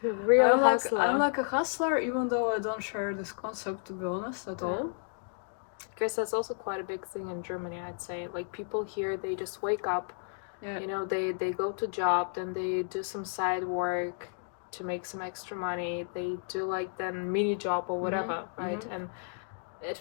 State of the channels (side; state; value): right; silent; digital silence